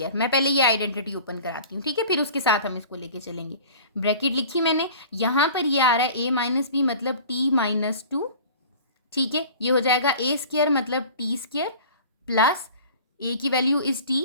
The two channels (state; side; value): inverted; both; correlation -0.43